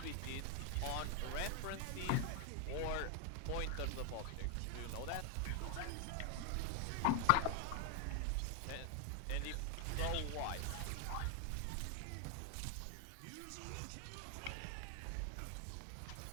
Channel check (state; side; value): different; both; correlation 0.00